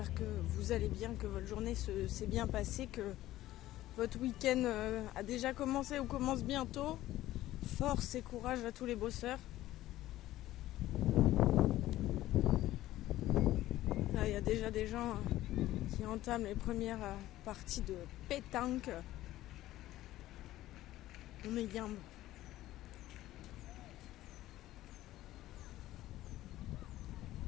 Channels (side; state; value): right; quieter; 15.1 dB